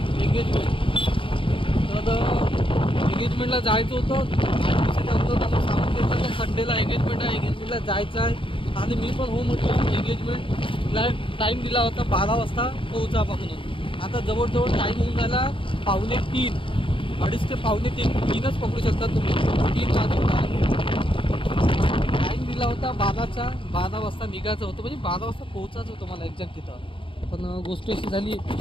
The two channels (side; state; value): right; late; 0.25 ms